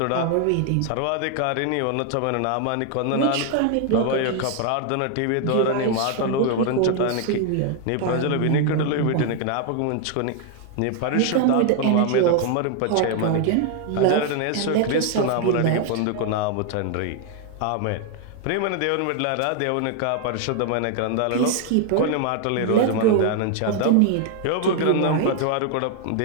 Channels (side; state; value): both; different; correlation 0.00